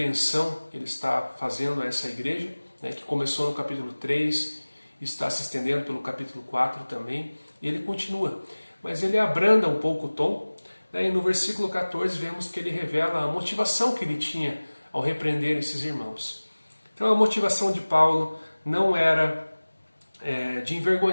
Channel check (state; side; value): inverted; both; correlation -1.00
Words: que ele está fazendo a essa igreja, que começou no capítulo 3 e está se estendendo pelo capítulo 4 também, e ele continua. Mas ele abranda um pouco o tom, e no versículo 14 vemos que ele revela a motivação que ele tinha ao repreender esses irmãos. Então a motivação de Paulo não era de